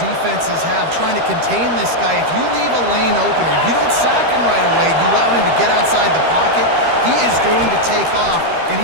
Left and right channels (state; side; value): late; left; 13 ms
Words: have trying to contain this guy. If you leave a lane open or you don't sack him right away, you allow him to get outside the pocket, he is going to take off, and